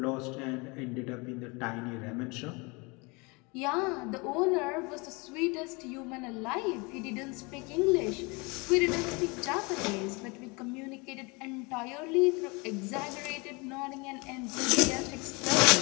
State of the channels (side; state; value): right; quieter; 28.0 dB